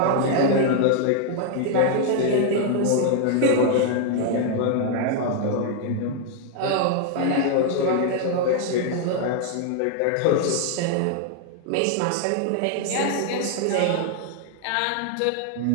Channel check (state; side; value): different; both; correlation 0.00